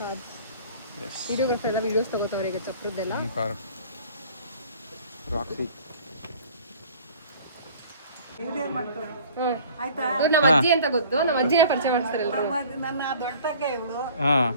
ಕಾರ್ ವಿಡಿಯೋಗ್ರಾಫರ್ ಎಲ್ಲ ವಿಡಿಯೋಸ್ ತಗೋತಾವ್ರೆ ಈಗ ಚಪ್ರದ್ದೆಲ್ಲ ನಮ್ಮ ಅಜ್ಜಿ ಅಂತ ಗೊತ್ತು ನಮ್ಮ ಅಜ್ಜಿನ ಪರಿಚಯ ಮಾಡ್ತಾರೆ ನನ್ನ ದೊಡ್ಡ ತಂಗೆ ಇವಳು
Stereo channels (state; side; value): inverted; both; correlation -0.48